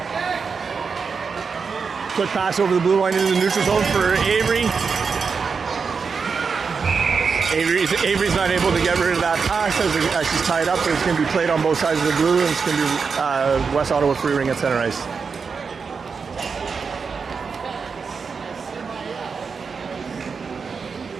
Quick pass over the blue line into the neutral zone for Avery. Avery's not able to get rid of that pass as she's tied up, but it's going to be played on both sides of the blue, and it's going to be West Ottawa free ring at center ice.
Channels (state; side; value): quieter; left; 5.4 dB